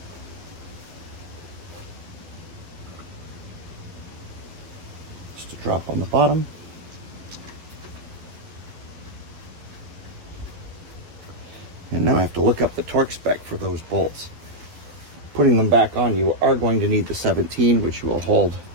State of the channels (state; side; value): late; left; 12 ms